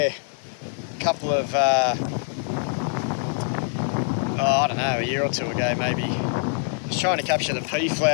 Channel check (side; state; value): right; silent; 62 dB below the other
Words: a couple of, I don't know, a year or two ago maybe. Just trying to capture the pea